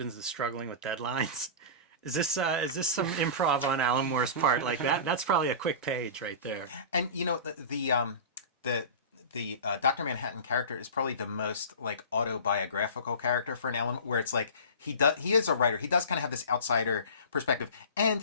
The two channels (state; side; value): inverted; both; correlation -0.33